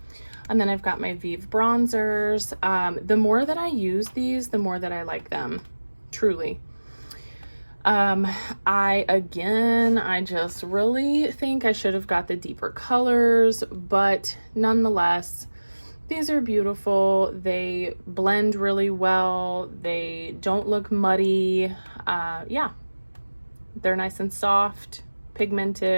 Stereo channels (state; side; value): inverted; both; correlation -1.00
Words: And then I've got my Vive bronzers. The more that I use these, the more that I like them, truly. I just really think I should have got the deeper colors, but nonetheless, these are beautiful. They blend really well. They don't look muddy. Yeah, they're nice and soft,